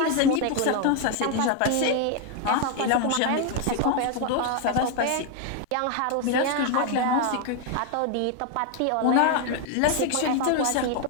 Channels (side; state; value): both; different; correlation 0.01